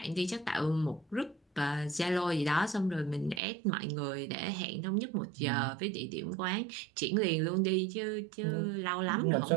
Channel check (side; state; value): left; drops out; at 3.4 s